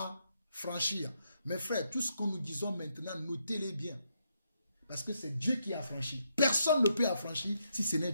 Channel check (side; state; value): both; inverted; correlation -0.78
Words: Mes frères, tout ce que nous disons maintenant, notez-les bien. Parce que c'est Dieu qui a affranchi. Personne ne peut affranchir si ce n'est